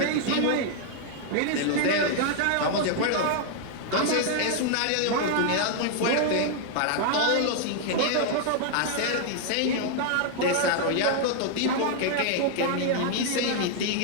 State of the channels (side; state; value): both; different; correlation 0.00